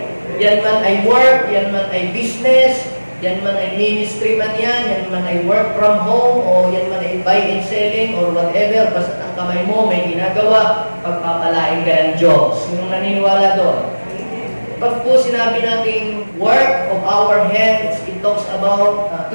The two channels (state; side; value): inverted; both; correlation -1.00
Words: Yan man ay work, yan man ay business, yan man ay ministry man yan man ay work from home, o yan man ay buy and selling, or whatever, basta ang kamay mo may ginagawa, pagpapalain ka ng Diyos. Sinong naniniwala doon? Pag po sinabi nating work of our hands, it talks about